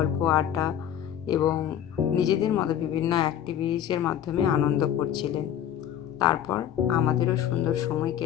আড্ডা এবং নিজেদের মতো বিভিন্ন অ্যাক্টিভিটিসের মাধ্যমে আনন্দ করছিলেন। তারপর আমাদেরও সুন্দর সময়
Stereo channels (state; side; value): quieter; right; 10.2 dB